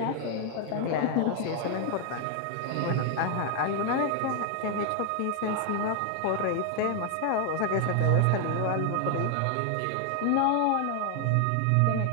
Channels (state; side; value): different; both; correlation 0.00